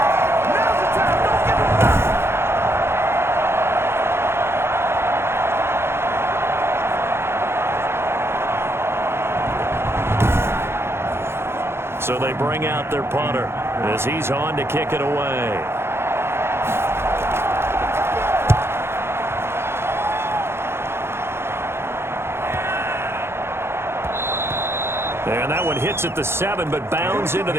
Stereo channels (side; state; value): left; late; 0.12 ms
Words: So they bring out their punter as he's on to kick it away. And that one hits at the 7, but bounds into the